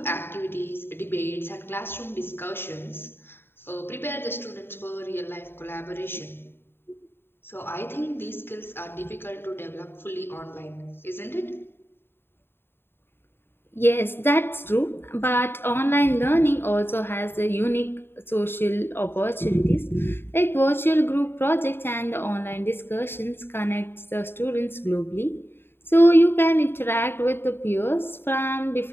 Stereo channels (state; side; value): late; right; 0.11 ms